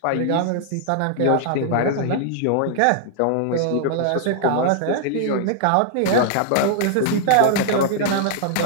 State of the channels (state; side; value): different; both; correlation -0.01